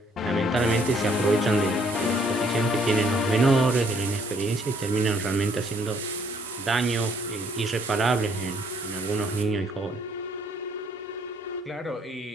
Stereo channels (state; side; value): normal; both; correlation 0.65